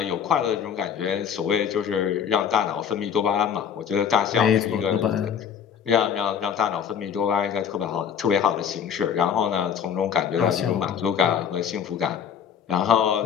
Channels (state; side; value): quieter; right; 8.0 dB